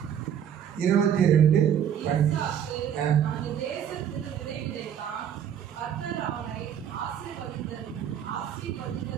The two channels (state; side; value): quieter; left; 9.1 dB